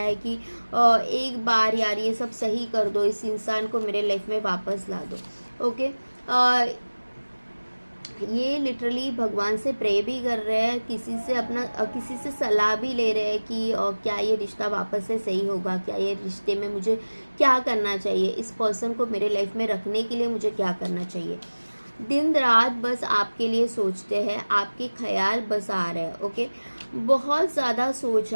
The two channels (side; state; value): both; inverted; correlation -1.00